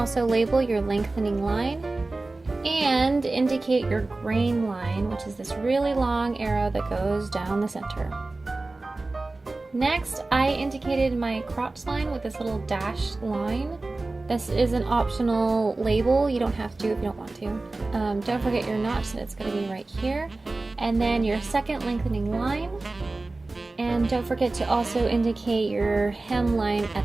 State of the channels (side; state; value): left; quieter; 3.2 dB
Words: label your lengthening line and indicate your grain line, which is this really long arrow that goes down the center. Next, I indicated my crotch line with this little dashed line. This is an optional label. You don't have to if you don't want to. Don't forget your notch, that it's going to be right here. And then your second lengthening line. And don't forget to also indicate your hem line